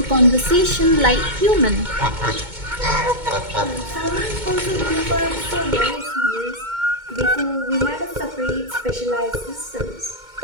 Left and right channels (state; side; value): late; left; 2.2 ms